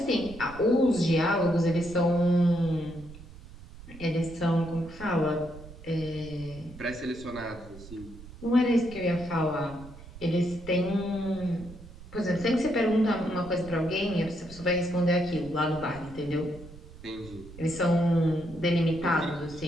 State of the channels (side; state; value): right; noise; rumble, 17 dB below the sound